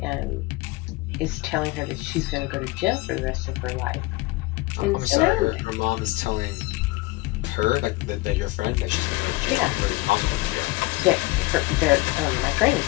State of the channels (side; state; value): right; quieter; 21.4 dB